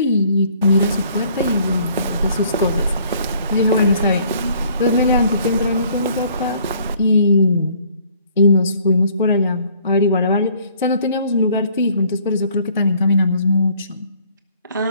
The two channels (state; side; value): inverted; both; correlation -0.60